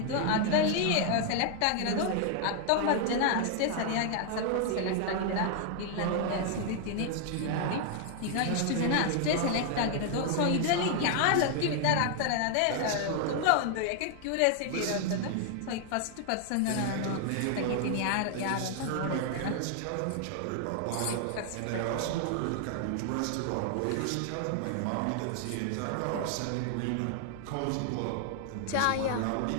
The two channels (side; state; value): both; different; correlation 0.00